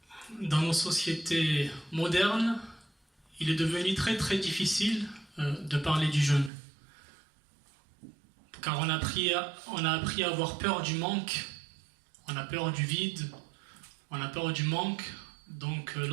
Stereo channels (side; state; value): left; drops out; at 6.5 s